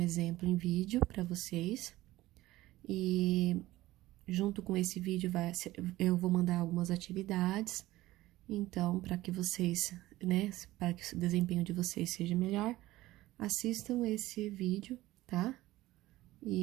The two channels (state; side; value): quieter; left; 17.0 dB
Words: em vídeo para vocês e junto com esse vídeo eu vou mandar algumas atividades. Então, para que vocês, para que o desempenho de vocês seja melhor, assistam esse vídeo, tá?